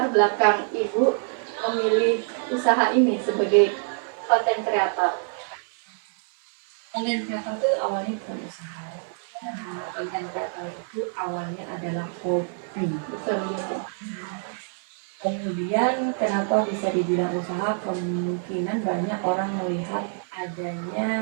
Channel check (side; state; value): left; silent; 60 dB below the other